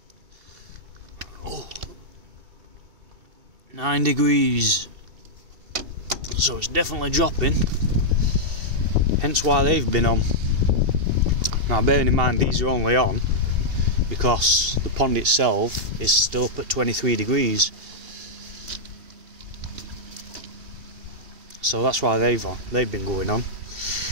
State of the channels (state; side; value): late; left; 2.7 ms